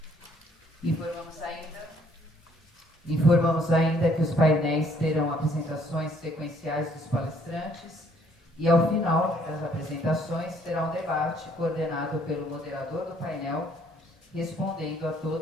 Informamos ainda que os painéis terão apresentações sequenciais dos palestrantes e, ao final das apresentações, terá um debate coordenado pelo moderador do painel, respondendo a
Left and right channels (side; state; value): both; normal; correlation 0.64